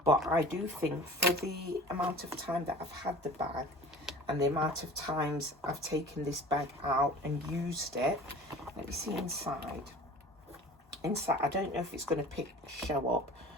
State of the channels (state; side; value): normal; both; correlation 0.42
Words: But I do think for the amount of time that I've had the bag and the amount of times I've taken this bag out and used it, let me see inside. Inside, I don't know if it's going to show up,